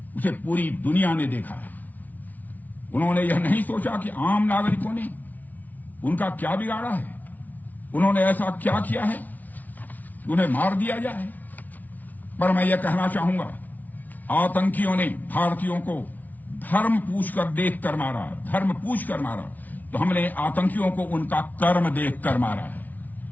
उसे पूरी दुनिया ने देखा है। उन्होंने यह नहीं सोचा कि आम नागरिकों ने उनका क्या बिगाड़ा है, उन्होंने ऐसा क्या किया है कि उन्हें मार दिया जाए। पर मैं यह कहना चाहूंगा, आतंकियों ने भारतीयों को धर्म पूछकर देखकर मारा, धर्म पूछकर मारा, तो हमने आतंकियों को उनका कर्म देखकर मारा है।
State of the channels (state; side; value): late; right; 0.077 ms